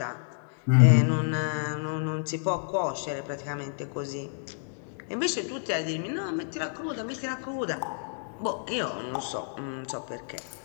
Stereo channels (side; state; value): right; silent; digital silence